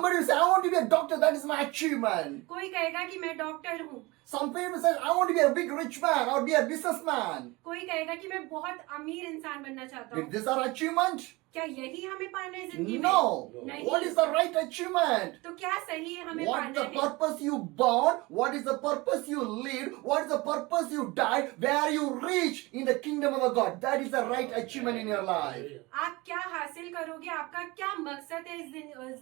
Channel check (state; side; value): quieter; left; 23.0 dB